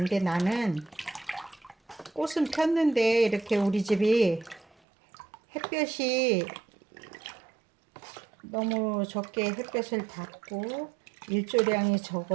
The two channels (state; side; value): drops out; left; at 4.7 s